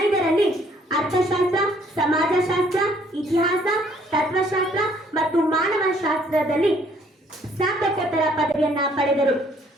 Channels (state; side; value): normal; both; correlation 0.63